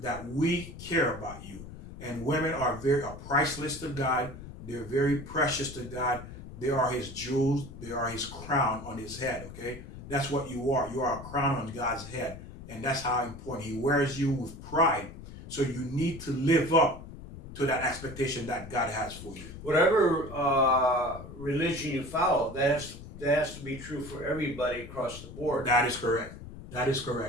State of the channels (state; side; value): noise; left; rumble, 13 dB below the sound